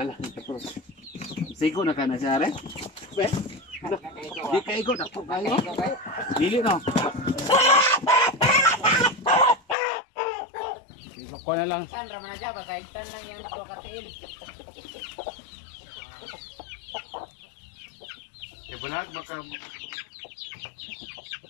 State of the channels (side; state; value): right; drops out; at 9.8 s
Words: tapos. Sigo na kana siya re. Be. Di kaigo na po kayo. Dili no. Sigo ko na lang. Tan raman aja basaitan lang yang do katiin. Bulag makabuhi.